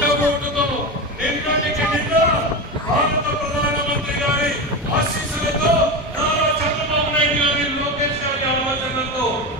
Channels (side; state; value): both; normal; correlation 0.20